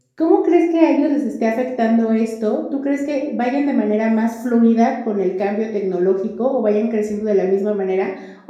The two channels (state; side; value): identical; both; correlation 1.00